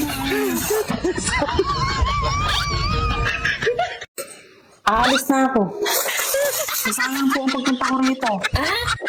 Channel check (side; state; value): both; identical; correlation 1.00